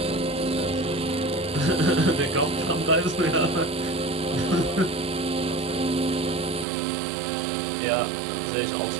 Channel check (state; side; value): drops out; left; at 6.7 s